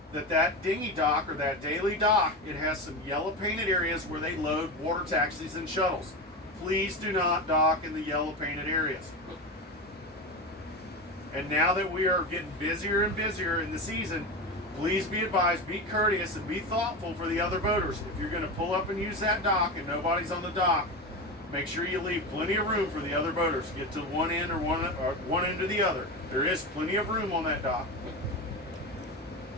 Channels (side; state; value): both; normal; correlation 0.21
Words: that dinghy dock or that daily dock, it has some yellow painted areas where they load water taxis and shuttles. Please do not dock in the yellow painted areas. And now that we are getting busier and busier in the season, please be advised, be courteous and be thoughtful for the other boaters. If you're going to pull up and use that dock and nobody's on the dock, make sure you leave plenty of room for the other boaters. Get to one end or one end to the other. There is plenty of room on that dock.